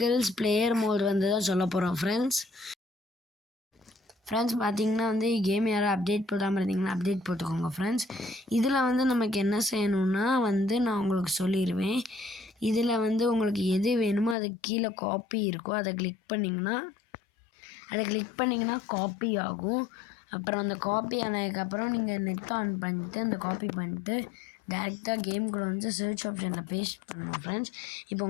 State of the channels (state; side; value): drops out; right; at 14.4 s